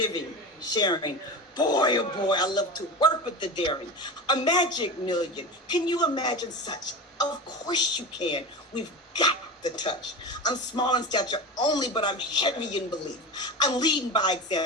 sharing. Boy, oh boy, I love to work with the daring. A magic million. Can you imagine such? Of course you can. We've got the touch. I'm small in stature only, but I'm heavy in belief. I'm leading by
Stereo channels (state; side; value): normal; both; correlation 0.27